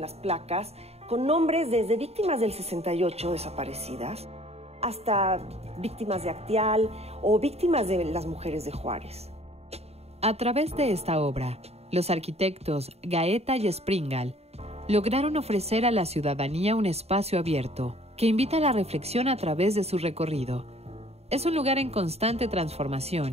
las placas con nombres desde víctimas del 68 desaparecidas hasta víctimas de Acteal o víctimas de las mujeres de Juárez. A través de esta obra, los arquitectos Gaeta y Springal lograron ofrecer a la ciudadanía un espacio abierto que invita a la reflexión a través de su recorrido. Es un lugar en constante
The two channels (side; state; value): left; late; 0.30 ms